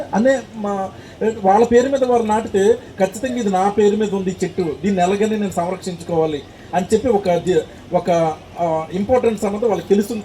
వాళ్ళ పేరు మీద వారు నాటితే ఖచ్చితంగా ఇది నా పేరు మీద ఉంది చెట్టు, దీన్ని ఎలాగని నేను సంరక్షించుకోవాలి అని చెప్పి ఒక ఇంపార్టెన్స్ అన్నది వాళ్ళకి తెలుస్తుంది.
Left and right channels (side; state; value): both; identical; correlation 1.00